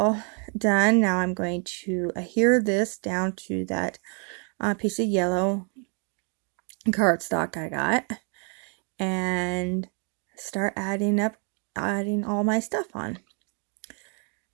done. Now I'm going to adhere this down to that piece of yellow cardstock I got and start adding all my stuff on.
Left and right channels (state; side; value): quieter; left; 39.3 dB